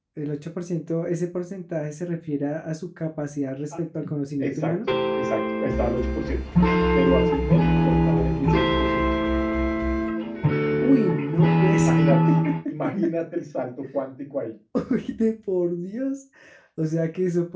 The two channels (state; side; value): identical; both; correlation 1.00